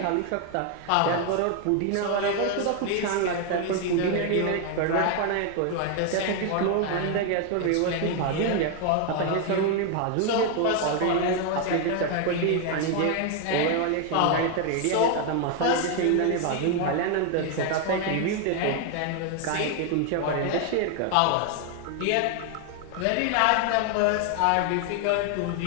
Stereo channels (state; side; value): different; both; correlation 0.01